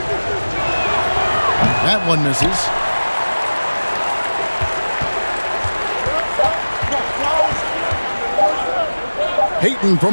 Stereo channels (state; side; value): inverted; both; correlation -1.00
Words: That one misses. Peyton